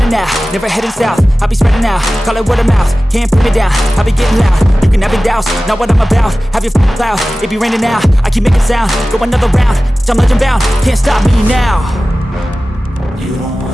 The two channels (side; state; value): both; normal; correlation 0.96